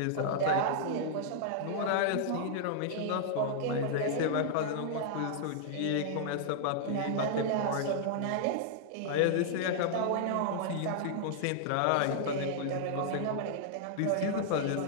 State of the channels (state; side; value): different; both; correlation -0.01